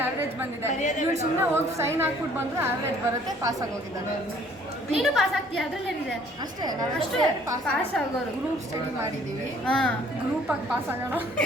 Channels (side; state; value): both; normal; correlation 0.58